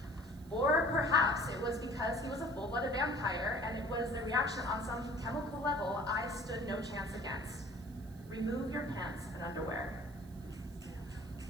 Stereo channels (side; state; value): right; noise; hiss, 25 dB below the sound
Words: Or perhaps it was because he was a full-blooded vampire, and it was the reaction on some chemical level I stood no chance against. Remove your pants and underwear.